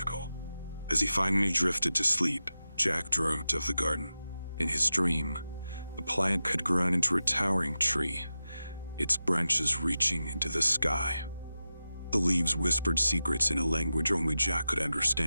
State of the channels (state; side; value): inverted; both; correlation -0.93